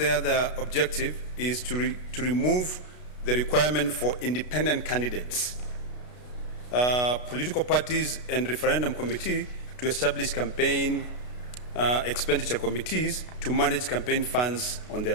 other objective is to remove the requirement for independent candidates, political parties and referendum committee to establish campaign expenditure committees to manage campaign funds on their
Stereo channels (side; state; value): right; late; 33 ms